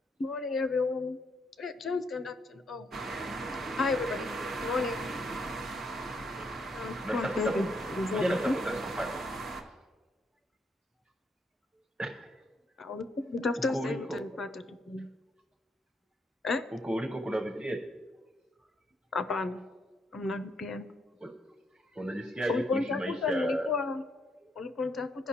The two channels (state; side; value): normal; both; correlation 0.75